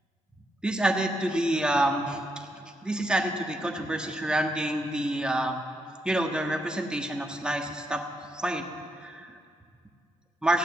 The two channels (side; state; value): both; normal; correlation 0.79